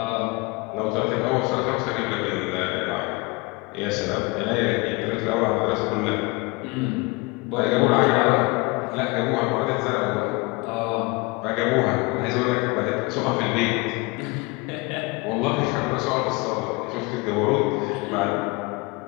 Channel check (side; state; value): right; quieter; 25.5 dB